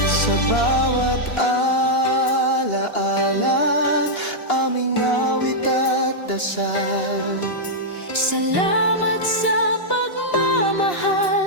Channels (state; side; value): late; right; 2.8 ms